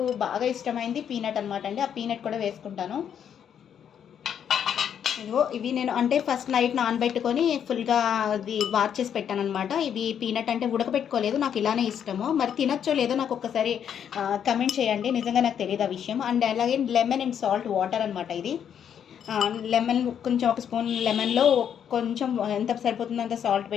బాగా ఇష్టమైంది పీనట్ అనమాట అండి. ఆ పీనట్ కూడా వేసుకుంటాను. ఇదిగో ఇవి నేను అంటే ఫస్ట్ నైట్ నానబెట్టుకొని ఫుల్గా అది వార్ చేసి పెట్టాను అనమాట. ఇవి పీనట్ అంటే ఉడకబెట్టుకోలేదు, నాకు ఇలానే ఇష్టము. మరి తినచ్చో లేదో నాకు ఒక్కసారి కమెంట్ చేయండి, నిజంగా నాకు తెలియదు ఆ విషయం. అండ్ అలాగే లెమన్ అండ్ సాల్ట్ వాటర్ అనమాట ఇది. లెమన్ కొంచెం ఒక స్పూన్ లెమన్లో కొంచెం ఎంత సరిపోతుందో అంత సాల్ట్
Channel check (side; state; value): right; quieter; 8.6 dB